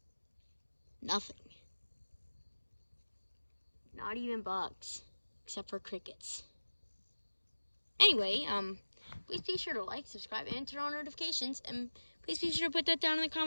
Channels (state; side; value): inverted; both; correlation -1.00